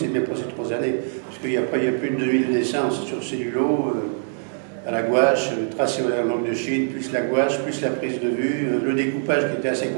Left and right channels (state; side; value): silent; left; digital silence